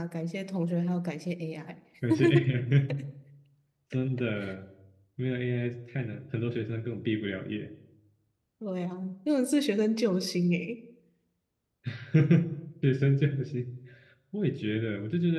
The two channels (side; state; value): both; identical; correlation 1.00